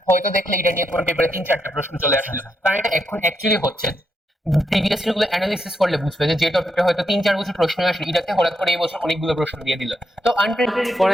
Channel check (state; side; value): normal; both; correlation 0.81